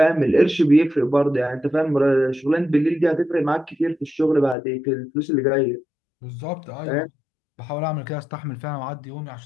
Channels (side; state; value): right; drops out; at 4.5 s